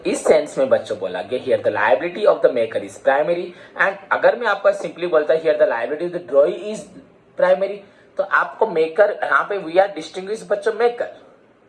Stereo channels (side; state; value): both; identical; correlation 1.00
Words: इस सेंस में बच्चों बोला गया here the liability of the maker is primary, and अगर मैं आपको सिंपली बोलता here the liability of the ड्रॉई is primary, तो आपको मेकर यहाँ पे वी आर डिस्टिंग्विश बच्चों, मेकर